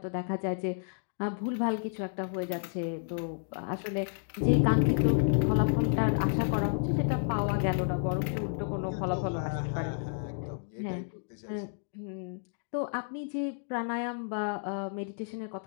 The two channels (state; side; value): silent; right; digital silence